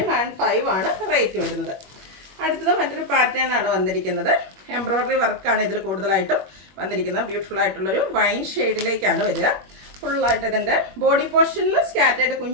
ആണ് റേറ്റ് വരുന്നത്. അടുത്തത് മറ്റൊരു പാറ്റേൺ ആണ് വന്നിരിക്കുന്നത്. എംബ്രോയിഡറി വർക്കാണ് ഇതിൽ കൂടുതലായിട്ടും വന്നിരിക്കുന്നത്. ബ്യൂട്ടിഫുൾ ആയിട്ടുള്ളൊരു വൈൻ ഷെയ്ഡിലേക്കാണ് വരിക. ഫുള്ളായിട്ട് ഇതിൻ്റെ ബോഡി പോർഷനിൽ സ്കാറ്റേഡ്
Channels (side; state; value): left; late; 21 ms